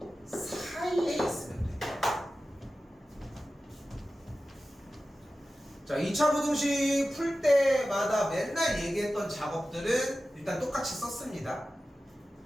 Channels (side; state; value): both; normal; correlation 0.94